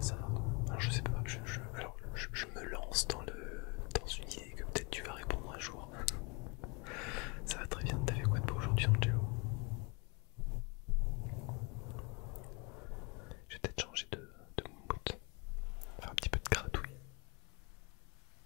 ça va? Alors, je sais pas, je me lance dans une idée que peut-être tu vas répondre un jour. Ça va très bien, t'as fait quoi de beau aujourd'hui, Angelo? Je vais peut-être changer de mood, faire un petit peu de gratouille.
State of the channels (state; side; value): quieter; right; 30.7 dB